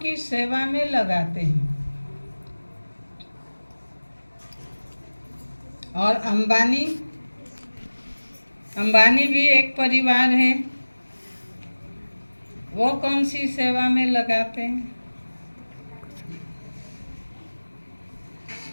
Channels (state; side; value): inverted; both; correlation -1.00